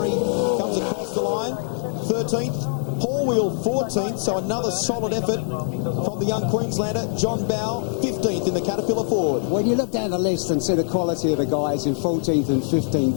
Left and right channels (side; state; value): right; silent; digital silence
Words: comes across the line, 13th. Paul Wheel 14th, so another solid effort from the young Queenslander. John Bow 15th in the Caterpillar Ford. When you look down the list and see the quality of the guys in 14th and